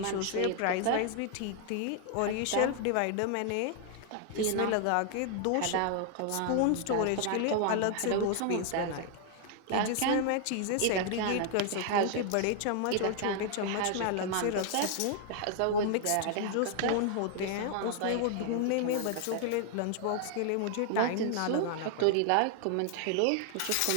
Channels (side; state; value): both; different; correlation 0.00